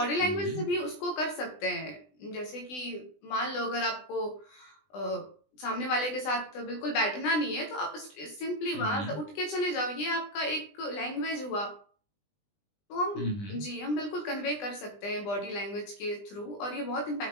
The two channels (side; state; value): right; late; 20 ms